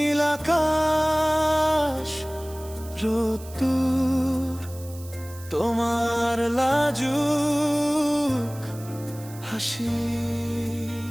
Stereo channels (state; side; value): noise; right; hiss, 19 dB below the sound